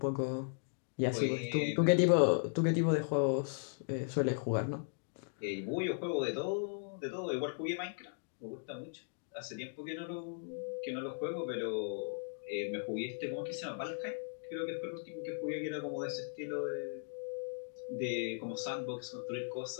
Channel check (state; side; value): silent; right; digital silence